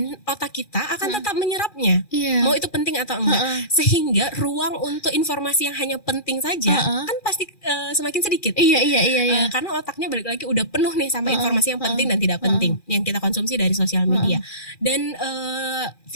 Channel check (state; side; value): late; right; 2.4 ms